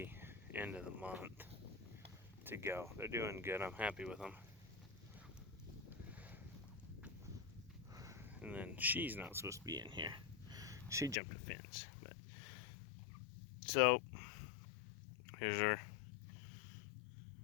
end of the month to go. They're doing good. I'm happy with them. And then she's not supposed to be in here. She jumped a fence. But so here's our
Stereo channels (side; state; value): right; drops out; at 11.2 s